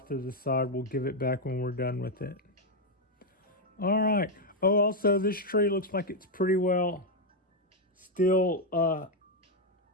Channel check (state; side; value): normal; both; correlation 0.02